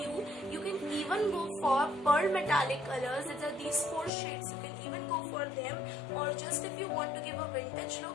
you can even go for pearl metallic colors. These 4 shades, you can even go for them, or just if you want to give a vintage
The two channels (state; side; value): drops out; right; at 4.1 s